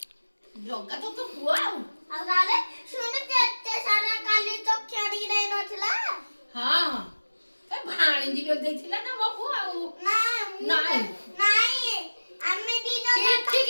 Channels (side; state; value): both; inverted; correlation -1.00